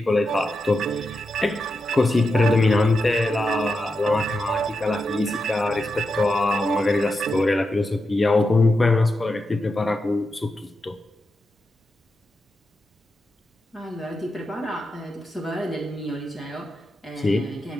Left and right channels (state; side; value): normal; both; correlation 0.88